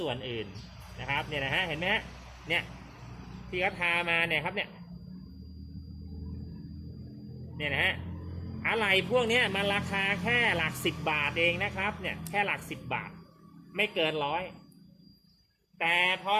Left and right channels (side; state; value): both; identical; correlation 1.00